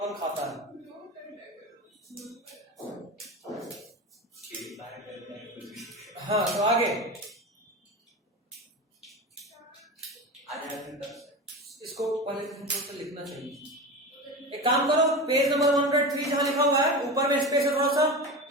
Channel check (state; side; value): normal; both; correlation 0.26